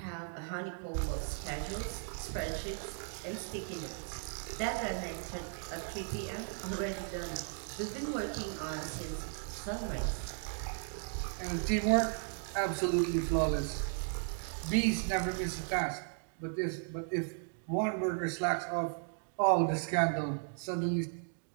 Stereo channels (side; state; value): left; silent; 54 dB below the other